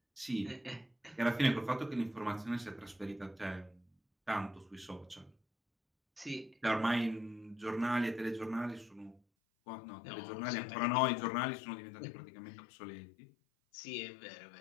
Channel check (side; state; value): right; drops out; at 9.2 s